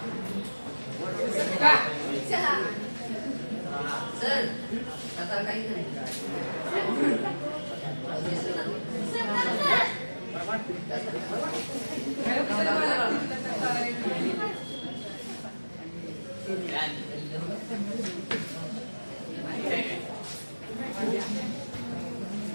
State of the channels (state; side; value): inverted; both; correlation -1.00